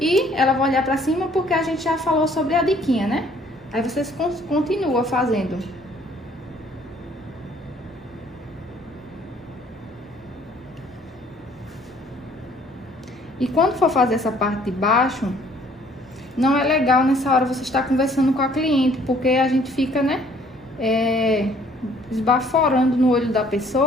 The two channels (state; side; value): normal; both; correlation 0.60